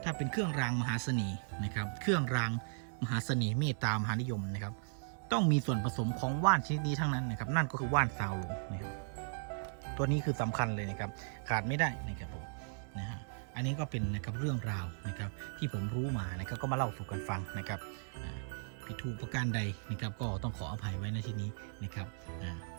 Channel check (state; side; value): silent; left; 53 dB below the other